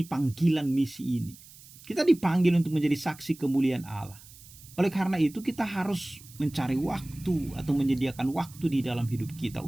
panggilan misi ini? Kita dipanggil untuk menjadi saksi kemuliaan Allah. Oleh karena itu kita harus mencari waktu atau menyediakan waktu di dalam hidup kita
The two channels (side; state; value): right; noise; hiss, 21 dB below the sound